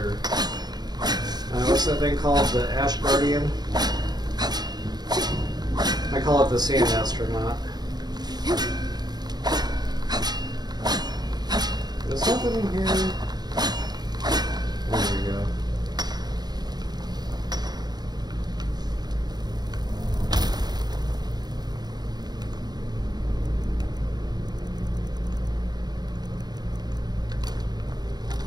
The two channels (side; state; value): left; late; 0.20 ms